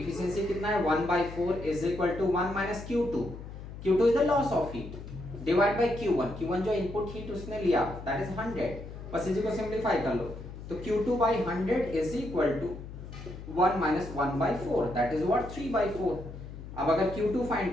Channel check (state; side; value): noise; left; hum, 12 dB below the sound